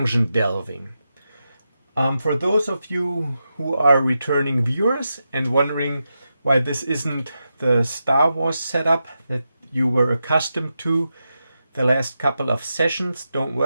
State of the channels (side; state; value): both; inverted; correlation -0.88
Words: delving. For those of you who are returning viewers and wondering why this isn't the Star Wars setup that you were accustomed to the last couple of sessions, don't